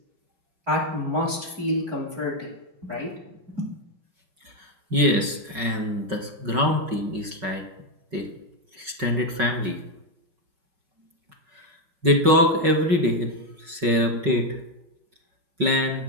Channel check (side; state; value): left; late; 5.3 ms